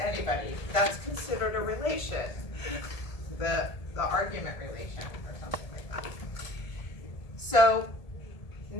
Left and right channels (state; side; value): late; right; 1.7 ms